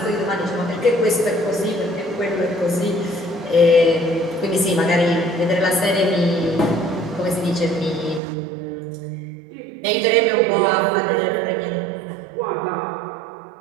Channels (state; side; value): drops out; left; at 8.2 s